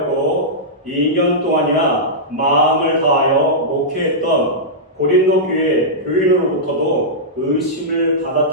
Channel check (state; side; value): normal; both; correlation -0.13